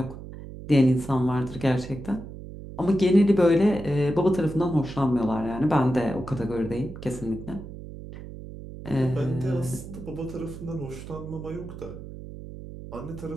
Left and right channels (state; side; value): noise; right; hum, 12 dB below the sound